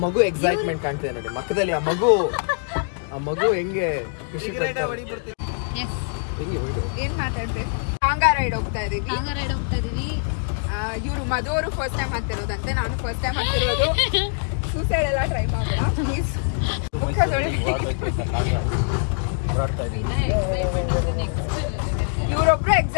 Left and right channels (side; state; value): right; silent; 63 dB below the other